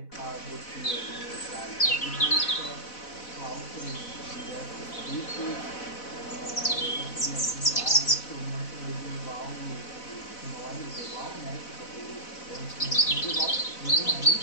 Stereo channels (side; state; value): right; late; 4.0 ms